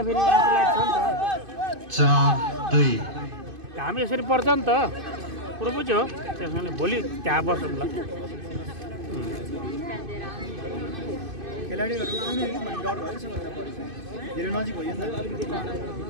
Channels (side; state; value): left; late; 2.5 ms